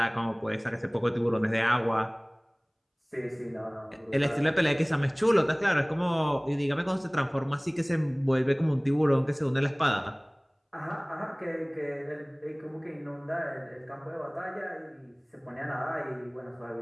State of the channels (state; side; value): identical; both; correlation 1.00